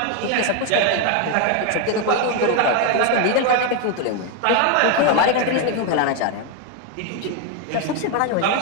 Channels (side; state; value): both; different; correlation 0.01